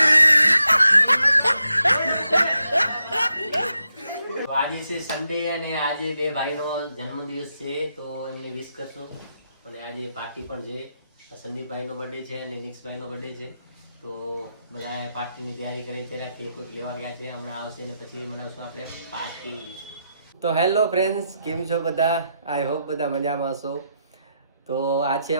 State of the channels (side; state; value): both; inverted; correlation -0.83